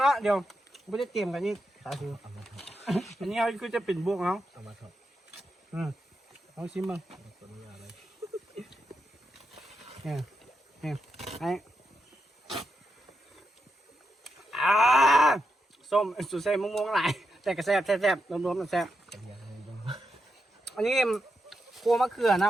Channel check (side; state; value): both; normal; correlation 0.85